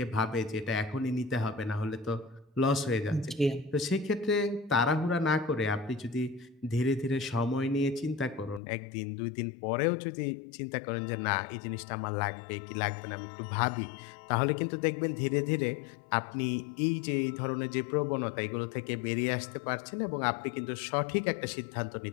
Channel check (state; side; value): drops out; right; at 8.6 s